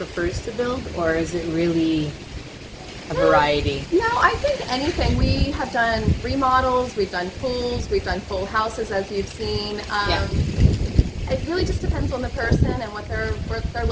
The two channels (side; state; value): both; identical; correlation 1.00